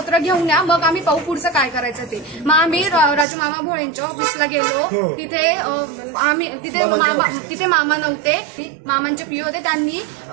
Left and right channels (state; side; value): drops out; left; at 3.2 s